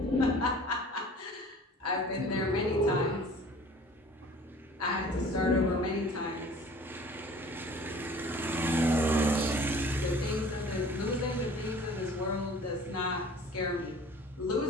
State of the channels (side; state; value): both; normal; correlation 0.47